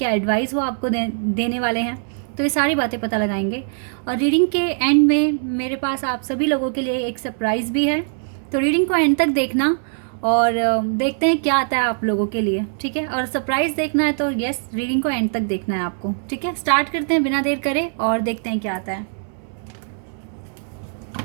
एडवाइस वो आपको देने वाले हैं। तो ये सारी बातें पता लगाएंगे। और रीडिंग के एंड में मेरे पास आप सभी लोगों के लिए एक सरप्राइज़ भी है। तो रीडिंग को एंड तक देखना और देखते हैं क्या आता है आप लोगों के लिए। ठीक है, और सरप्राइज़ देखना है तो यस, रीडिंग को एंड तक देखना है आपको। ठीक है, स्टार्ट करते हैं बिना देर करे और देखते हैं क्या आता है।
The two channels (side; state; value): left; silent; digital silence